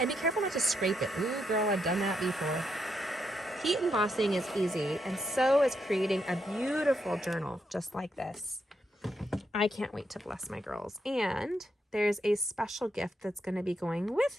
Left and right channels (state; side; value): normal; both; correlation 0.80